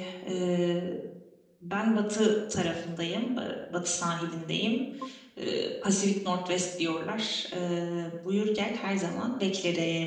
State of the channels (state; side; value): identical; both; correlation 1.00